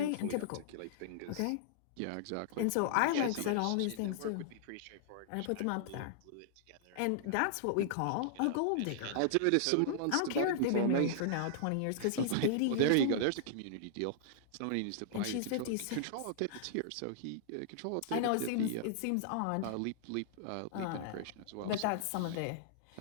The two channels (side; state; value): both; different; correlation -0.01